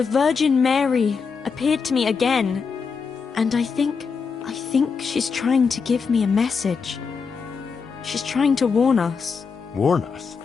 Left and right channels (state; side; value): quieter; right; 5.5 dB